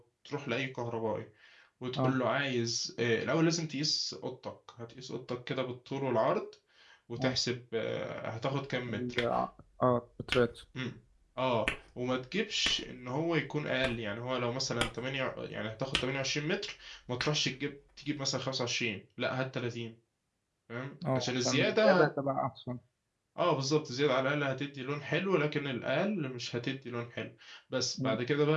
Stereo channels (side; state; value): both; identical; correlation 1.00